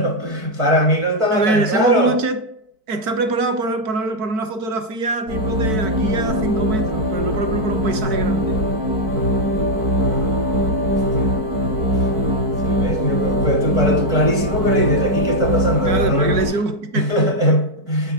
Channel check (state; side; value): late; left; 4.6 ms